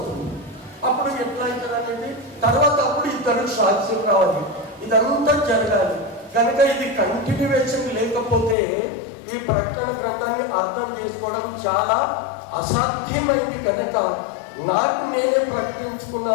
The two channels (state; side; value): drops out; right; at 8.6 s